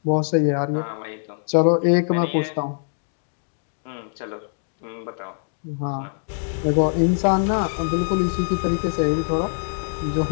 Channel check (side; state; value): right; silent; 63 dB below the other